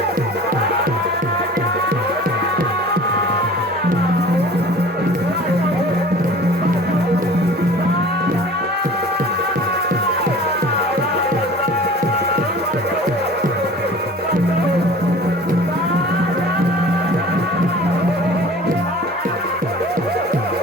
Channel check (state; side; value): normal; both; correlation 0.43